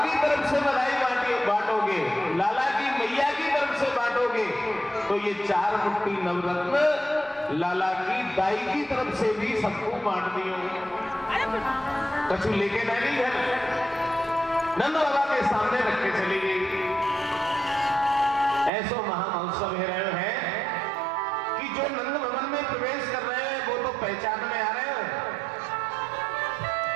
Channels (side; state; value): left; drops out; at 18.7 s